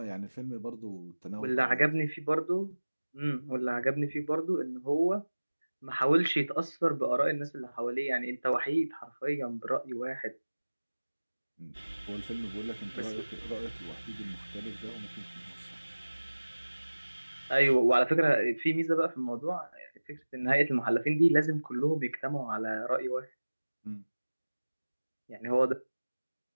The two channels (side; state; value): both; inverted; correlation -1.00